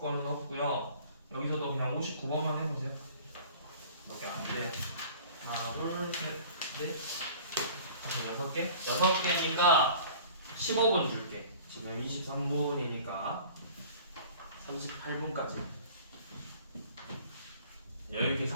없고요. 여기서도 그냥 59번만 해보세요. 몇 개 안 돼요. 하나, 둘, 셋, 넷, 다섯, 6개? 6개니까 15분 줄게. 지금 23분이니까 38분까지. 여유있게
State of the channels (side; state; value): both; inverted; correlation -0.46